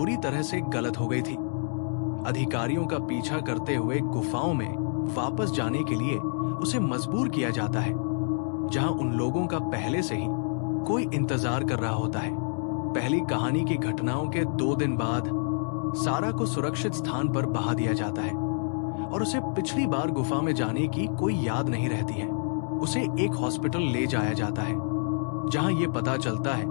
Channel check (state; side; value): silent; right; digital silence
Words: तरह से गलत हो गई थी, अधिकारियों का पीछा करते हुए गुफाओं में वापस जाने के लिए उसे मजबूर किया जाता है, जहां उन लोगों का पहले से ही कोई इंतजार कर रहा होता है। पहली कहानी की घटनाओं के 2 दिन बाद सारा को सुरक्षित स्थान पर बहा दिया जाता है और उसे पिछली बार गुफा में जाने की कोई याद नहीं रहती है। उसे एक हॉस्पिटल ले जाया जाता है, जहां यह पता चलता है